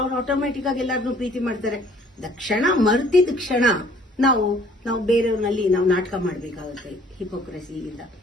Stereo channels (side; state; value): both; normal; correlation 0.57